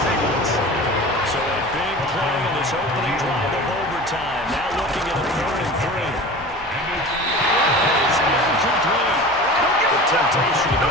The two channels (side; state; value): both; normal; correlation 0.36